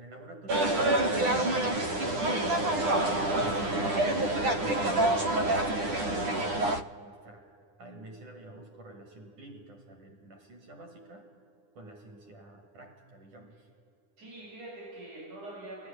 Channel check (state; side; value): late; left; 10 ms